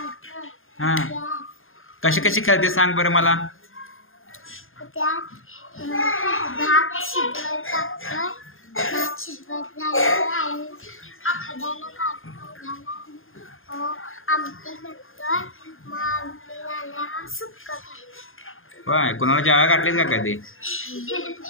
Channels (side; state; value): right; late; 0.60 ms